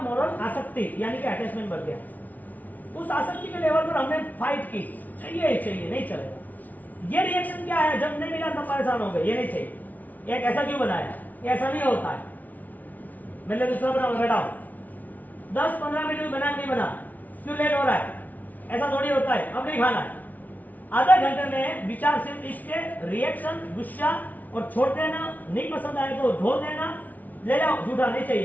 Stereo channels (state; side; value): late; right; 0.077 ms